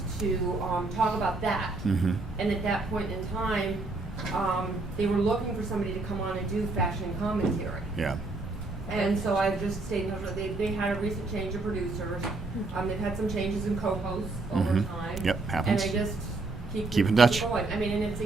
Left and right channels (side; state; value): left; quieter; 3.4 dB